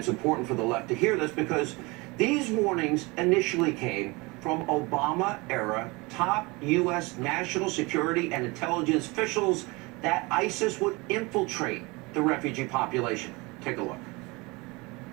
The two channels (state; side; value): quieter; left; 25.2 dB